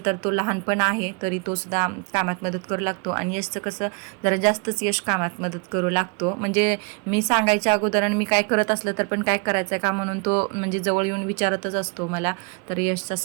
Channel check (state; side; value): quieter; left; 35.8 dB